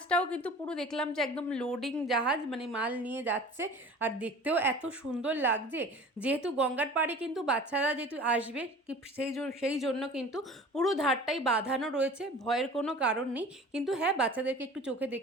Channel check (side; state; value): both; normal; correlation 0.42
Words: কিন্তু পুরো দেখলাম যে একদম লোডিং জাহাজ, মাল নিয়ে যাচ্ছে। আর দেখতেও এত সুন্দর লাগছে। যেহেতু গঙ্গার পাড়ে কিন্তু বাচ্চারা যেহেতু আসবে, সেই জন্য কিন্তু পুরো ধারটাই বাঁধানো রয়েছে, ভয়ের কোনো কারণ নেই। কিন্তু হ্যাঁ, বাচ্চাদেরকে একটু চোখে